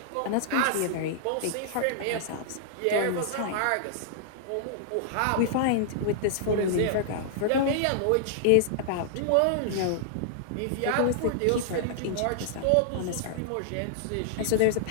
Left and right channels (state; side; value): different; both; correlation -0.01